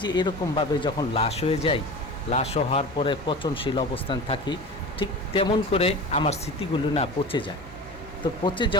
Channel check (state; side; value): normal; both; correlation 0.33